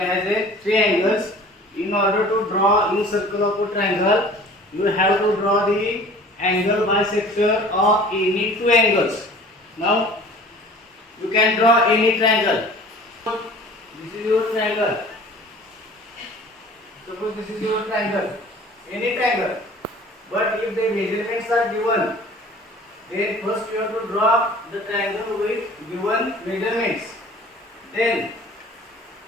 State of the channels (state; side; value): normal; both; correlation 0.46